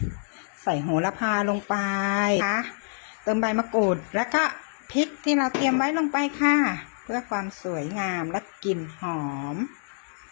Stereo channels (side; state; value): right; silent; digital silence